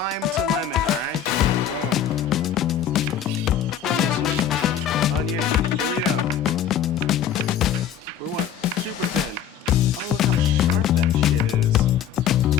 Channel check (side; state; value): right; quieter; 8.9 dB